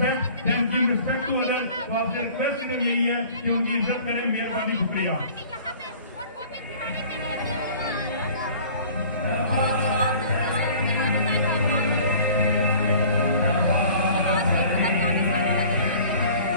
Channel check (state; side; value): inverted; both; correlation -0.48